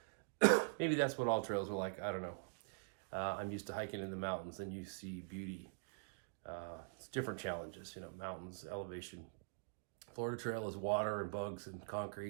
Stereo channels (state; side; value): silent; left; digital silence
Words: maybe that's what all trails are like. I don't know. I'm used to hiking in the mountains, and you see beauty. It's different challenges, you know, mountains, elevation. Florida Trail is water and bugs and